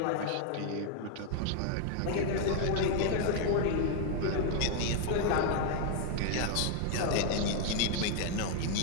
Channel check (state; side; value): different; both; correlation 0.00